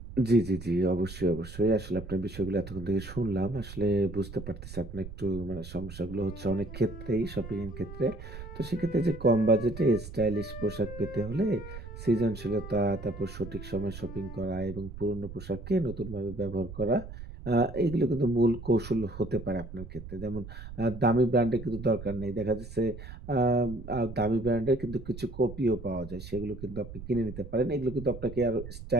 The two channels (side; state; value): right; noise; rumble, 12 dB below the sound